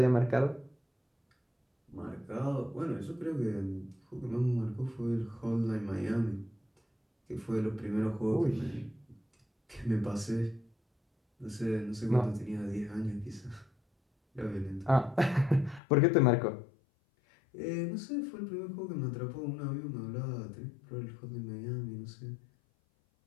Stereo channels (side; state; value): right; drops out; at 15.8 s